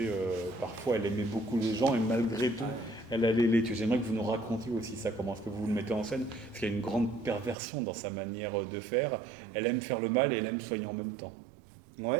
parfois, elle aimait beaucoup les gens, et malgré tout, elle allait les tuer. J'aimerais que vous nous racontiez aussi ça, comment est-ce que vous le mettez en scène, parce qu'il y a une grande perversion dans sa manière de faire. Elle aime faire le mal et elle aime soigner en même temps.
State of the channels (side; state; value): left; drops out; at 7.6 s